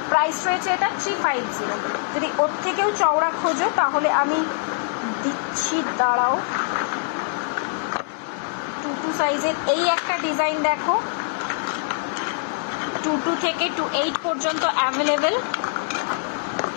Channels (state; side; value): silent; right; 62 dB below the other